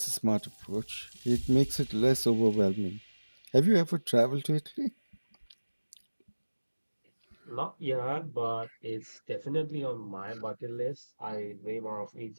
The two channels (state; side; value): inverted; both; correlation -1.00